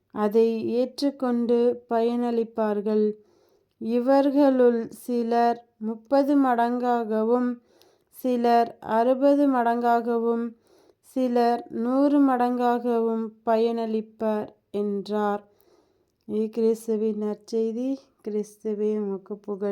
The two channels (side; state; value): both; identical; correlation 1.00